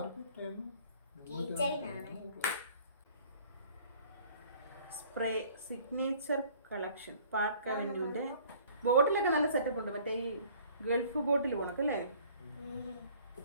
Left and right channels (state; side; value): inverted; both; correlation -0.54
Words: കീ ചെയിനാണ്. സ്പ്രേ സിഗ്നേച്ചർ കളക്ഷൻ പാർക്ക് അവന്യൂന്റെ ബോട്ടിലൊക്കെ നല്ല സെറ്റപ്പ് ഉണ്ട്. മറ്റേ ഈ ഗൾഫ് ബോട്ടിൽ പോണക്കല്ലേ,